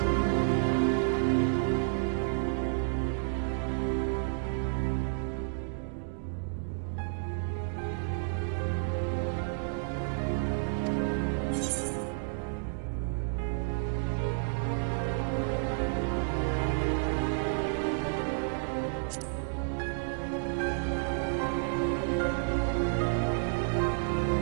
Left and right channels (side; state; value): left; silent; digital silence